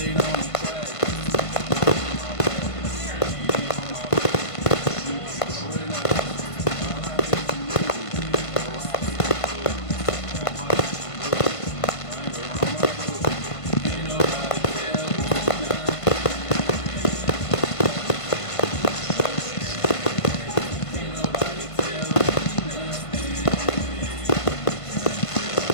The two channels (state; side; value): late; right; 1.5 ms